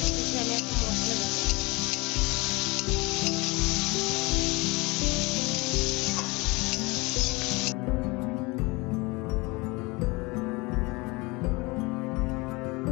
আমি এখন মশলা দেবো।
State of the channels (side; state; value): right; quieter; 25.1 dB